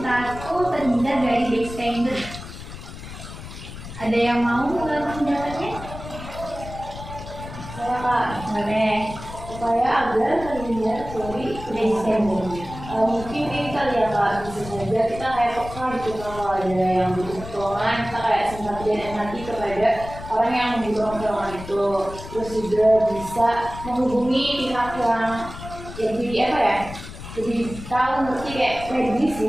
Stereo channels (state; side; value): noise; left; rumble, 12 dB below the sound